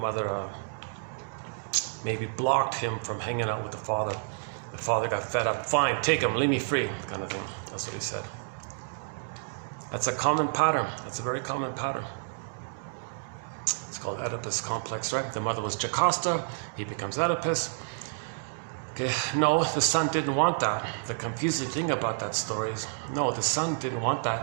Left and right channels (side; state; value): left; silent; digital silence